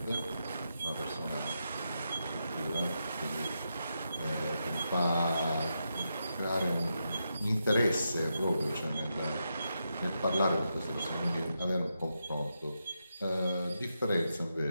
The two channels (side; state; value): both; inverted; correlation -0.85